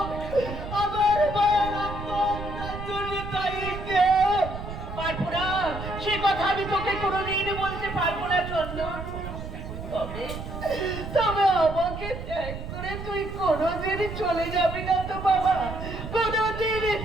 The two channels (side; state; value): right; noise; rumble, 8 dB below the sound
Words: আমার মায়ের আত্মহত্যার জন্য দায়ী কে? বাপুরা, সে কথা আমি তোকে কোনোদিন বলতে পারবো না চন্দন। তবে তবে আমাকে ত্যাগ করে তুই কোনোদিন চলে যাবি না তো বাবা? কোনোদিন